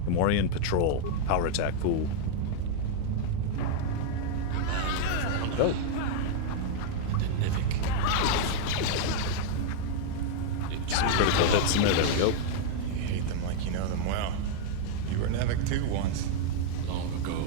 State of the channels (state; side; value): different; both; correlation -0.01